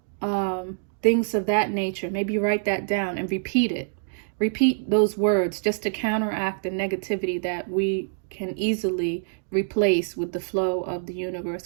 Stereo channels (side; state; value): left; silent; digital silence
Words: Things of that nature. Maybe write that down and repeat it. Repeat those words just to counteract the negativity that we can easily replace with the flow of the universe,